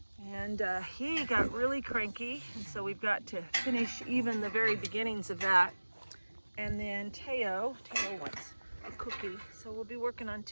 and he got really cranky, and so we've got to finish even the very beginnings of that. And then Teo wants a cookie, so we'll be working on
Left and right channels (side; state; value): both; inverted; correlation -1.00